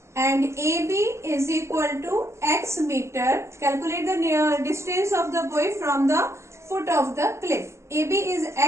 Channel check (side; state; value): left; late; 0.13 ms